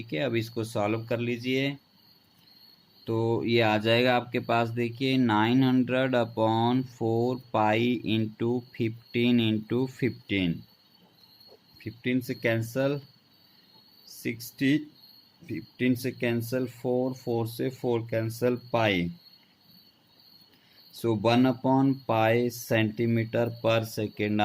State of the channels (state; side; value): identical; both; correlation 1.00